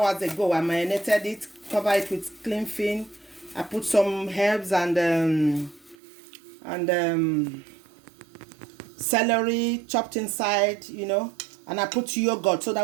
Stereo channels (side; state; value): left; drops out; at 6.0 s